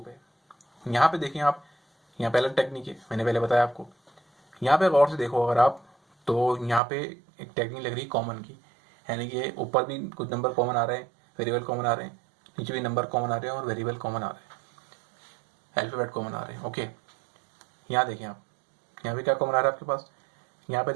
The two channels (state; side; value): drops out; left; at 6.8 s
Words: यहाँ पे देखें आप, यहाँ पे अलग टेक्निक है, मैंने पहले बताया आपको। यहाँ पे गौर से देखो अगर आप, तो यहाँ पे एक टेक्निक लग रही है कॉमन की, यानी कि ऊपर भी कुछ नंबर कॉमन आ रहे हैं, वेरिएबल कॉमन आ रहे हैं, नीचे भी नंबर कॉमन आ रहे हैं और वेरिएबल कॉमन आ रहे हैं, अल्फाबेट कॉमन आ रहे हैं। ओके, यहाँ देखें आप, यहाँ पे क्या कॉमन आ रहा है आपके पास, यहाँ पे